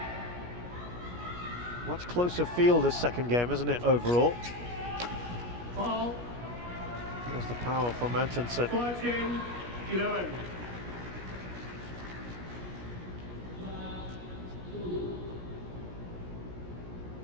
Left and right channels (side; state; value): left; late; 17 ms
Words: Much closer field this second game, isn't it, overall? Foul. There's the power from Antonsen. 14-11.